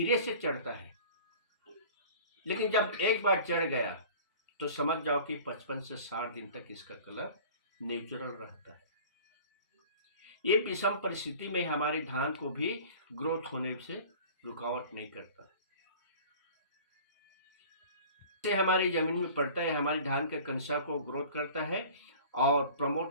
से चढ़ता है, लेकिन जब एक बार चढ़ गया तो समझ जाओ कि 55 से 60 दिन तक इसका कलर नेचुरल रहता है। ये विषम परिस्थिति में हमारे धान को भी ग्रोथ होने से रुकावट नहीं करता। से हमारी जमीन में पड़ता है, हमारी धान के कंसा को ग्रोथ करता है और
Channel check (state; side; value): inverted; both; correlation -0.44